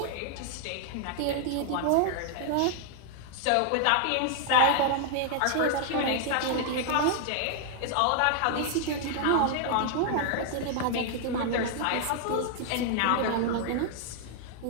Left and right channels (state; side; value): different; both; correlation 0.00